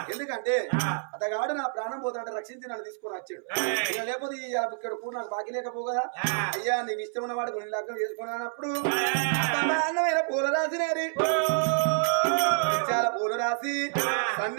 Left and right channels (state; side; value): silent; left; 59 dB below the other